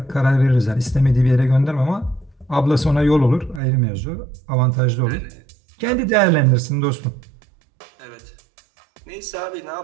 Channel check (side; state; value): left; drops out; at 3.6 s